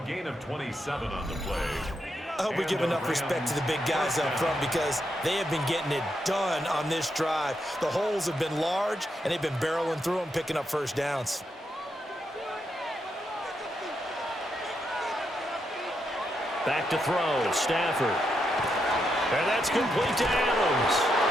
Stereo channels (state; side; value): normal; both; correlation 0.82